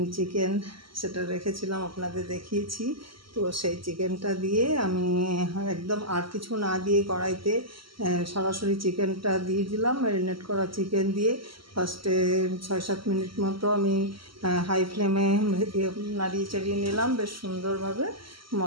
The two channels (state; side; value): late; left; 0.74 ms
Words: চিকেন সেটা রেখেছিলাম, আপনাদের দেখিয়েছি। তো সেই চিকেনটা দিয়ে আমি একদম আর কিছু না দিয়ে কড়াইতে সরাসরি চিকেনটা দিয়ে দিলাম। ম্যারিনেট করা চিকেন দিয়ে ফার্স্টে 6-7 মিনিট মতো আমি হাই ফ্লেমে নাড়িয়ে চাড়িয়ে নিলাম বেশ সুন্দরভাবে,